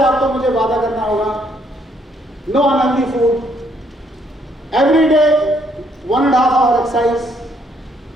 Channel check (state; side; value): normal; both; correlation 0.69